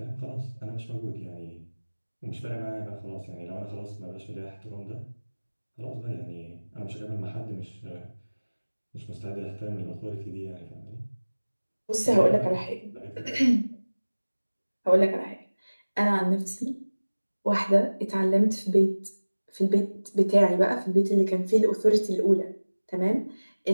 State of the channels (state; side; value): inverted; both; correlation -1.00